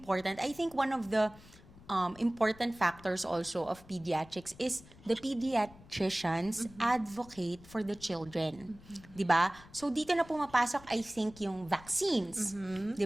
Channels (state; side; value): noise; left; rumble, 22 dB below the sound